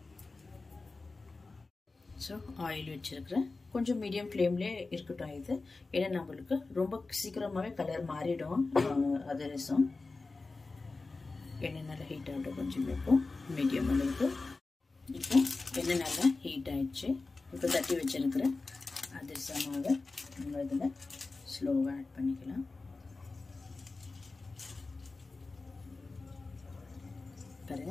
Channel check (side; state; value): right; quieter; 3.7 dB